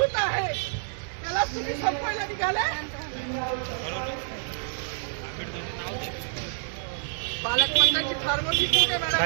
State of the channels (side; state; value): left; silent; digital silence